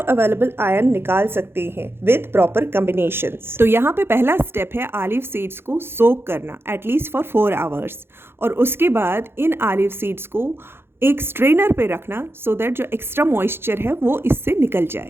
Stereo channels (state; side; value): late; left; 0.11 ms